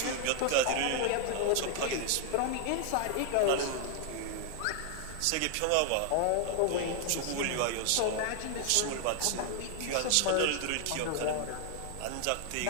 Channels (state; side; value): different; both; correlation 0.00